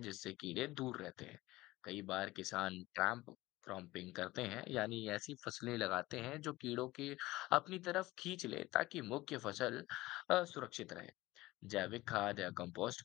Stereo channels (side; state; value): right; quieter; 18.7 dB